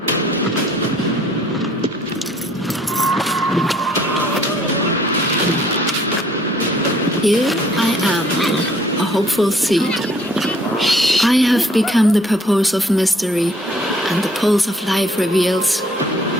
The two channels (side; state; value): both; normal; correlation 0.60